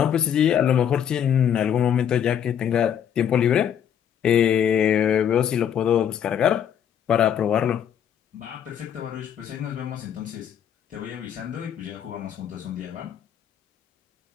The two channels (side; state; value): right; quieter; 9.0 dB